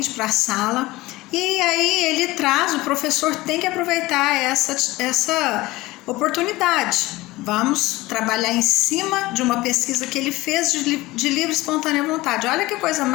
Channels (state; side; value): quieter; right; 19.4 dB